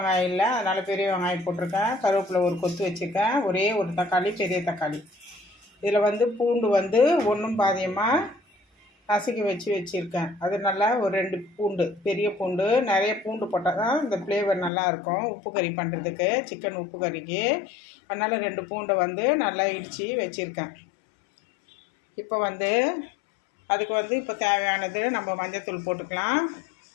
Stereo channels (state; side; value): drops out; right; at 14.7 s